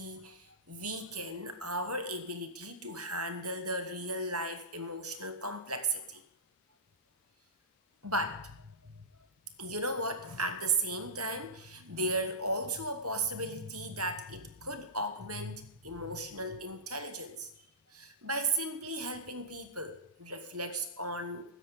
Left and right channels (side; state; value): both; normal; correlation -0.17